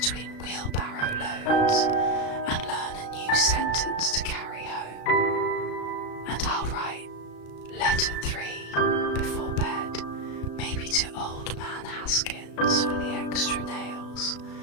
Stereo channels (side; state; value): right; late; 35 ms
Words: wheelbarrow loads and learn a new sentence to carry home. And I'll write letter 3 before bed, maybe to old man Haskins for the extra nails,